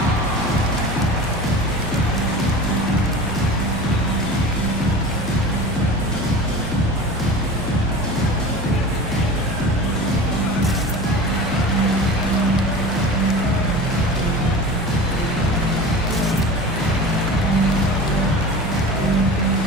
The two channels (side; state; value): both; normal; correlation 0.35